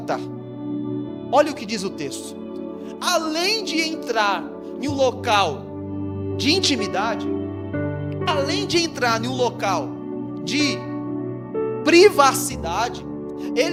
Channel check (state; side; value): identical; both; correlation 1.00